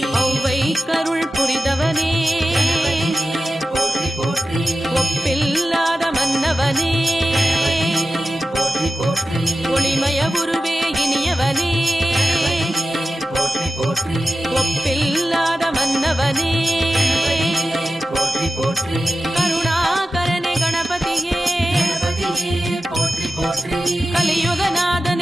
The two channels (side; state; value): both; normal; correlation 0.94